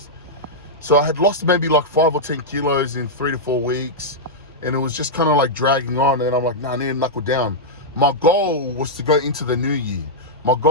So I had lost maybe like 5 or 10 kilos in 3 to 4 weeks. and it was just kind of like dragging on. And I'm like, nah, I need to knuckle down. My goal was to go into the new year. My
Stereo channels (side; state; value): both; normal; correlation -0.07